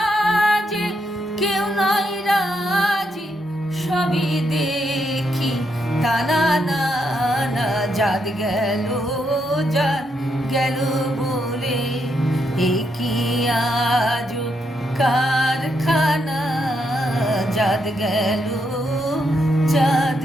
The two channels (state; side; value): normal; both; correlation 0.79